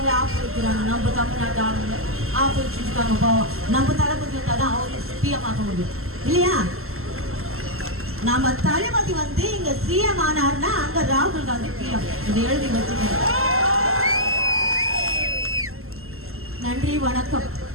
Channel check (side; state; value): left; late; 0.62 ms